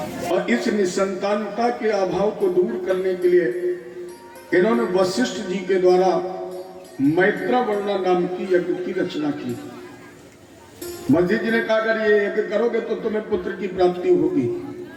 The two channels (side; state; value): both; identical; correlation 1.00